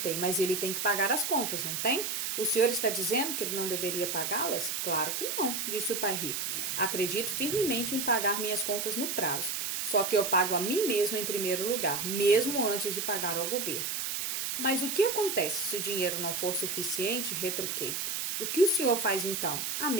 mas ele tem que pagar as contas, não tem? O senhor está dizendo que ele não deveria pagá-las? Claro que não, disse o pai rico. Acredito firmemente em pagar minhas contas no prazo, só que eu pago a mim mesmo em primeiro lugar, mesmo antes de pagar ao governo. Mas o que acontece se o dinheiro não for suficiente? Retruquei. O que o senhor faz então? A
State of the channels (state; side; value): noise; right; hiss, 2 dB below the sound